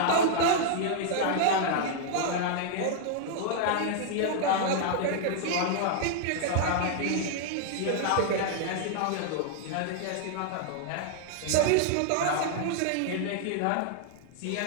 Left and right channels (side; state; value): both; different; correlation 0.00